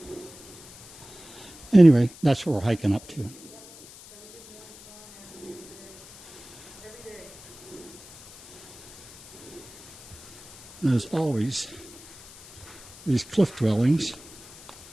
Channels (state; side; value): noise; left; hiss, 19 dB below the sound